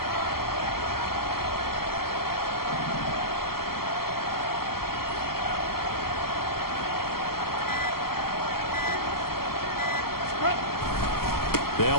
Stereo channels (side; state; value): right; late; 0.94 ms